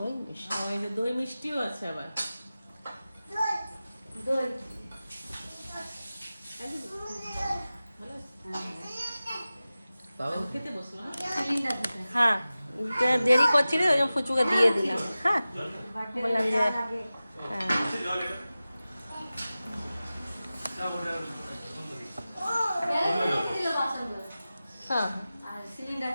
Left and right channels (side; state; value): both; inverted; correlation -0.96